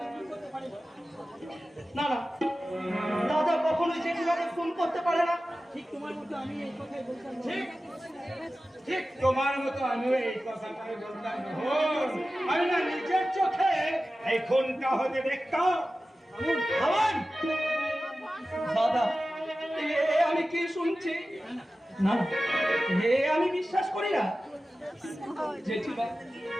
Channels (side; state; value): both; normal; correlation 0.95